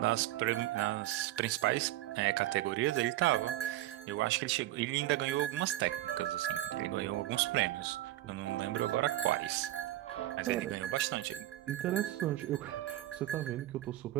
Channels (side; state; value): left; quieter; 15.1 dB